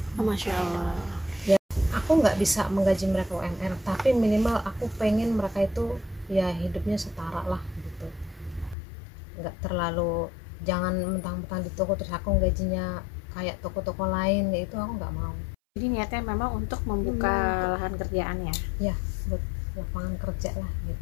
Masya Allah. Ya, aku nggak bisa menggaji mereka UMR, tapi minimal aku pengen mereka itu ya hidupnya setara lah gitu. Nggak terlalu, jangan mentang-mentang di toko terus aku gajinya kayak toko-toko lain, ya itu aku nggak mau. Jadi niatnya memang untuk membuka lahan kerjaan ya? Ya, buat lapangan kerja lah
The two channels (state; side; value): drops out; right; at 8.8 s